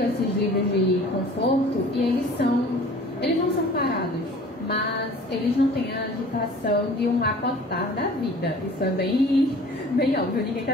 esses livros de conforto e eles não são parados, mas eles não têm a agitação de um acotar da vida. Isso é bem óbvio, ninguém está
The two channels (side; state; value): both; normal; correlation 0.47